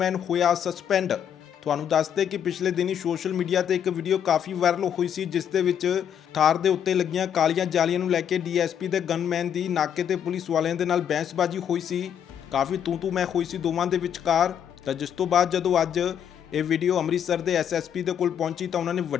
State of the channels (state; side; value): quieter; right; 8.9 dB